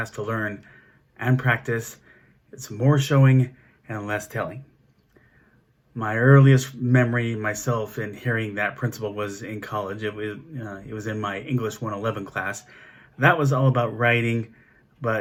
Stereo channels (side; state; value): both; identical; correlation 1.00